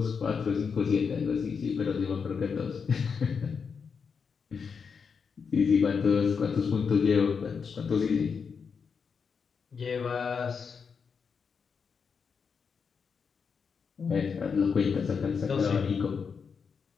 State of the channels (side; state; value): right; quieter; 5.9 dB